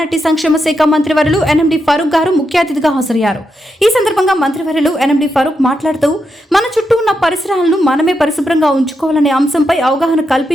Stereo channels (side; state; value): both; normal; correlation 0.84